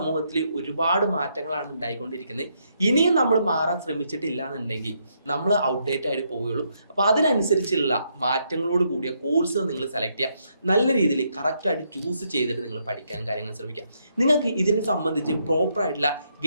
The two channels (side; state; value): both; inverted; correlation -0.76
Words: ഒരുപാട് മാറ്റങ്ങളാണ് ഉണ്ടായിക്കൊണ്ടിരിക്കുന്നത്. ഇനിയും നമ്മൾ മാറാൻ ശ്രമിച്ചിട്ടില്ല എന്നുണ്ടെങ്കിൽ നമ്മൾ ഔട്ട്ഡേറ്റ് ആയിട്ട് പോവുകയുള്ളൂ. അപ്പൊ അതിനനുസരിച്ചുള്ള മാറ്റങ്ങളോട് കൂടിയ കോഴ്സ് നിങ്ങൾ സെലക്ട് ചെയ്യുക. നല്ല രീതിയിൽ കറക്റ്റായിട്ട് ചൂസ് ചെയ്തിട്ട് നിങ്ങൾ പഠിക്കാനും കാര്യങ്ങളും ശ്രമിക്കുക. നിങ്ങൾക്ക് ഇതിനെ സംബന്ധിച്ച് പ്രോപ്പറായിട്ടുള്ള